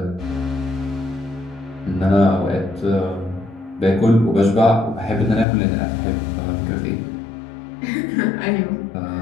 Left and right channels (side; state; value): right; drops out; at 5.5 s